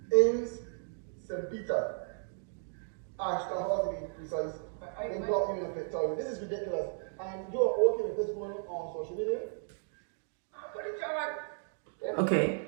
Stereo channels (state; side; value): silent; left; digital silence